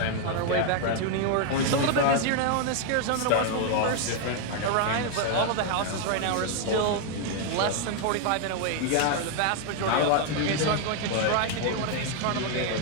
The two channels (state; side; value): different; both; correlation 0.00